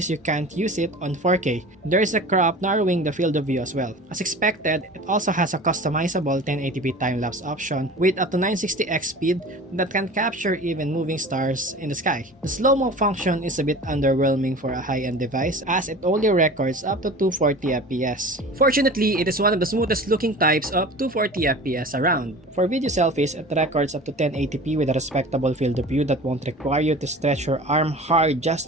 you can't use it on 4K. There is a crop narrowing the field of view as well. As expected, it also has a customizable 1080p time-lapse option with up to 960x speed that can capture even moving stars in the sky. The slow-mo function is a bit underwhelming for a high-end device as it only records up to 240 FPS. Fortunately, it is one of the smoothest looking types of 240 FPS around. For video selfies, it records up to 1080p with a respectable field of view that won't require you to stretch your arm hard just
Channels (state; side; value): normal; both; correlation 0.38